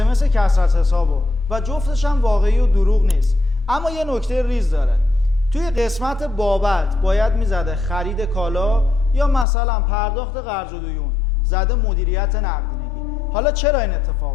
اس کسر حسابو و جفتش هم واقعی و دروغ نیست. اما یه نکته ریز داره. توی قسمت بابت باید میزده خرید کالا یا مثلا پرداخت قرض و دیون، زده مدیریت نقدینگی. حالا چرا این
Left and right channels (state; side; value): drops out; right; at 9.5 s